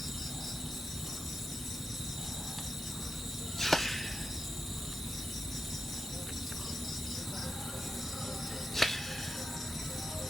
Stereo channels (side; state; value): both; normal; correlation 0.88